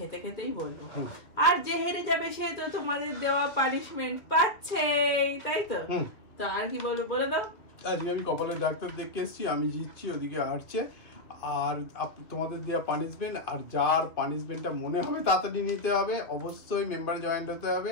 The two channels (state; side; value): late; right; 2.1 ms